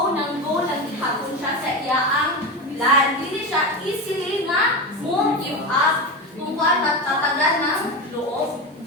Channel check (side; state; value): both; normal; correlation 0.20